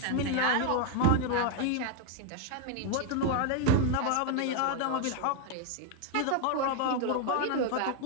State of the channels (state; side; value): different; both; correlation 0.01